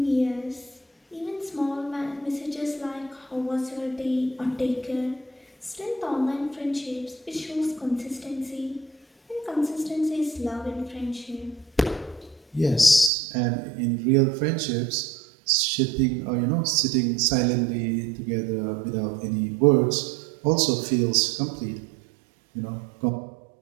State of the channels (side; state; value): left; drops out; at 13.1 s